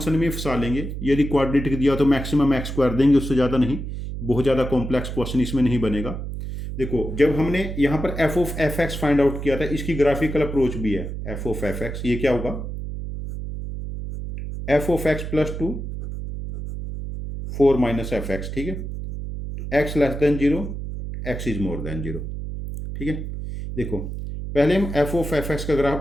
में फंसा लेंगे, यदि क्वाड्रेटिक दिया तो मैक्सिमम x² देंगे, उससे ज़्यादा नहीं। बहुत ज़्यादा कॉम्प्लेक्स क्वेश्चन इसमें नहीं बनेगा। देखो जब हमने यहाँ पर f(f(x) फाइंड आउट किया था, इसकी ग्राफिकल अप्रोच भी है f(f(x), ये क्या होगा, f(x + 2 4 - fx), ठीक है। x < 0, x > 0, ठीक है। देखो पहले हम f(f(x) का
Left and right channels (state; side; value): noise; right; hum, 6 dB below the sound